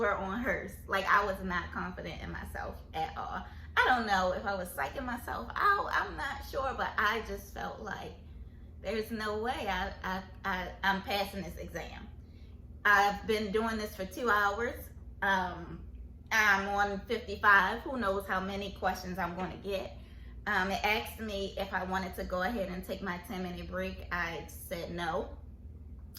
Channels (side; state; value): both; identical; correlation 1.00